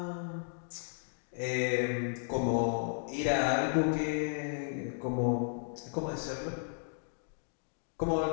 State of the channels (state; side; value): silent; right; digital silence